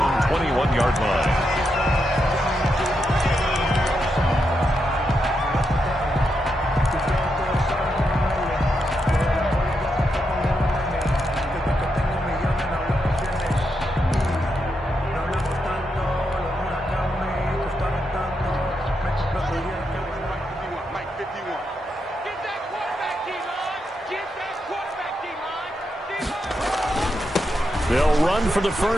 21-yard line. They'll run for the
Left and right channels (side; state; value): both; normal; correlation 0.83